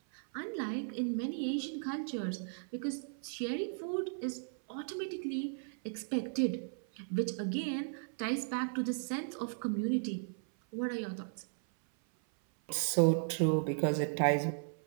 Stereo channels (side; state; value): left; silent; 54 dB below the other